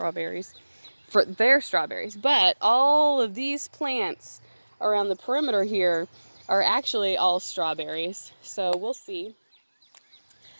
for their strawberries. But all of these plants around the perimeter here are actually all strawberries, so we'll see.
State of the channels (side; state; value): both; inverted; correlation -1.00